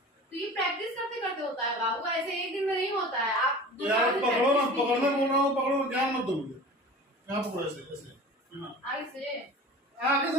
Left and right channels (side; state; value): both; normal; correlation 0.39